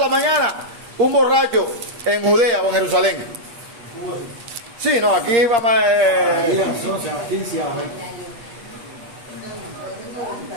mañana un borracho en Judea o en Jerusalén. Sí, no, aquí vamos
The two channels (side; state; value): left; late; 8.3 ms